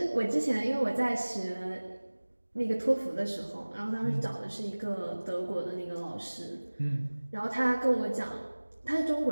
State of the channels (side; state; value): both; inverted; correlation -1.00